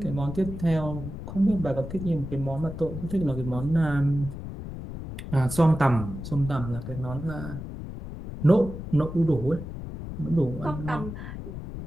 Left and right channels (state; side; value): noise; left; rumble, 9 dB below the sound